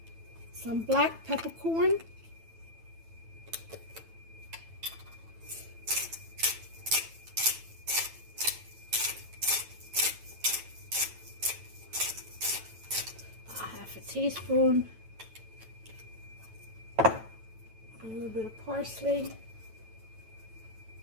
some black peppercorn. A teaspoon, a little bit of parsley.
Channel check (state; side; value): late; left; 9.1 ms